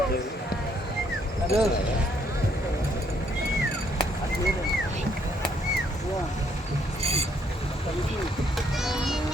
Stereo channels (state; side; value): normal; both; correlation 0.69